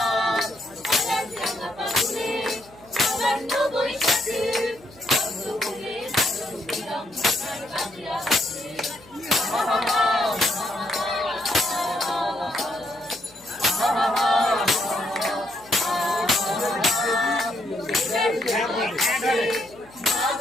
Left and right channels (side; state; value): left; noise; hum, 25 dB below the sound